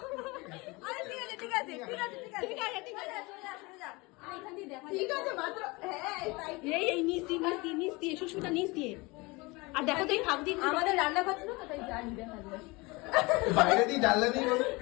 আরে ঠিক আছে ঠিক আছে ঠিক আছে ঠিক আছে ঠিক আছে ঠিক আছে, ঠিক আছে মাত্র। হ্যাঁ, এই নিচ দিয়ে নিচ দিয়ে নিচ দিয়ে, শ্বশুরটা নিচ দিয়ে। আর দেখো তো এই ফাঁক দিয়ে আমাদের রান্না করছে না, তাই জানি দেখা যায়। বাইরে দিয়ে জানলা দিয়ে বলো,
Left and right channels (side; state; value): right; quieter; 24.7 dB